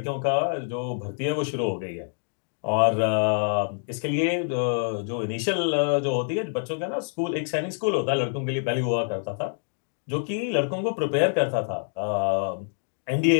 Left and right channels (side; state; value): right; silent; 61 dB below the other